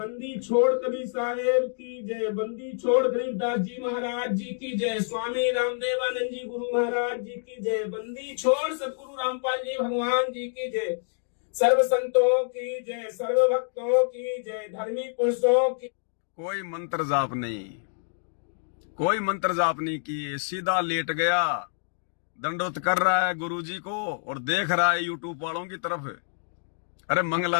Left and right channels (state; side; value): silent; right; digital silence